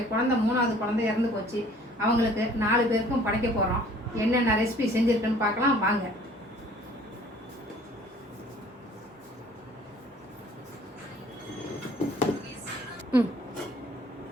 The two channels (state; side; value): normal; both; correlation 0.53